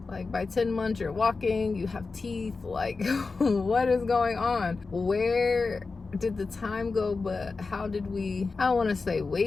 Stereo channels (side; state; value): right; quieter; 4.2 dB